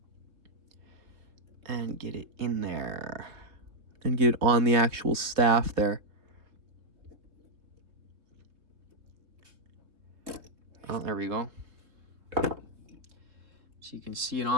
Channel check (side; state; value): left; late; 3.5 ms